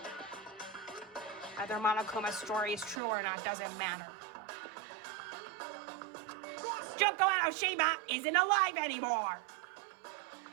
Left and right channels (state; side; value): drops out; left; at 3.0 s